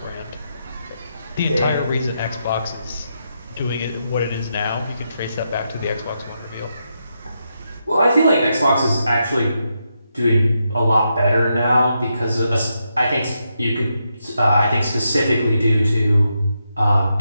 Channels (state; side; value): inverted; both; correlation -0.83